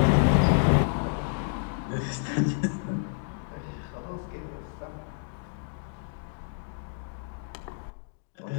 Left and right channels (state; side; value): silent; right; digital silence